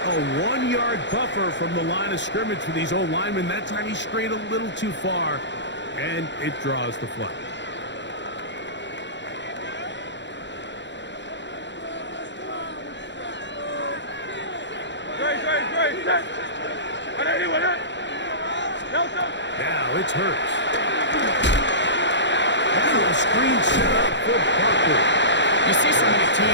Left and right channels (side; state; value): right; late; 0.52 ms